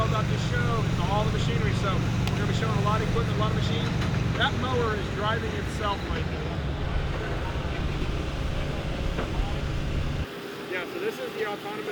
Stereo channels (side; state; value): both; identical; correlation 1.00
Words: about this show. It's all the machinery. So we're going to be showing a lot of equipment, a lot of machines. That mower is driving itself right now. Yeah, so this is the